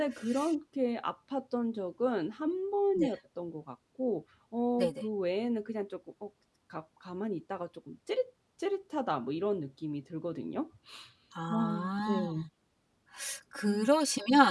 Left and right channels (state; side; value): identical; both; correlation 1.00